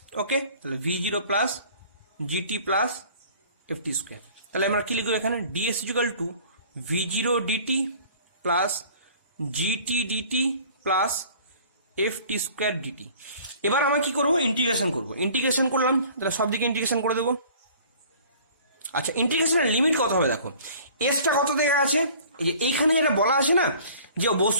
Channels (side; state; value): both; inverted; correlation -0.49